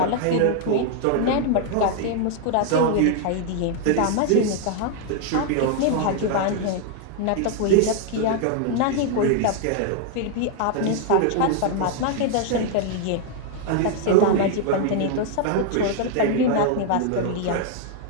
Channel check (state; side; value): different; both; correlation 0.00